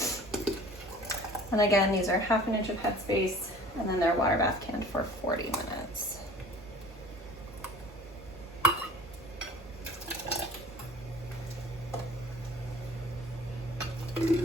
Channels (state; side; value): normal; both; correlation 0.46